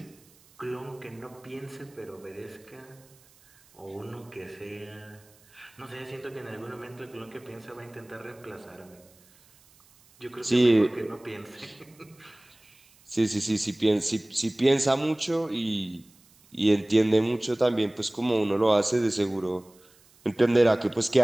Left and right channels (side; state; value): right; noise; hiss, 29 dB below the sound